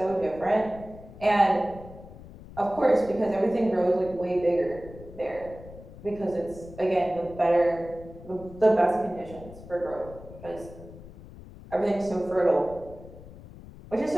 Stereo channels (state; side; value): noise; left; rumble, 17 dB below the sound